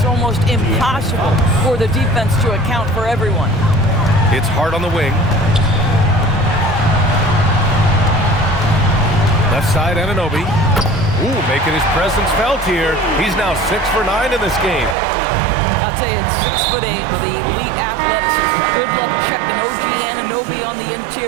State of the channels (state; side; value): drops out; left; at 15.0 s